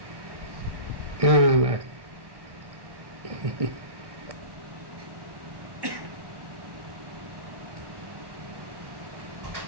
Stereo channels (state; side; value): late; left; 1.1 ms